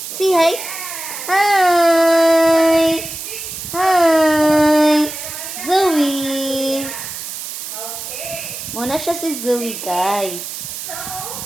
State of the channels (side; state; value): right; noise; hiss, 8 dB below the sound